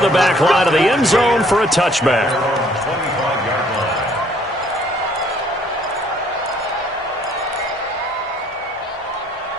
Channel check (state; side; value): normal; both; correlation 0.61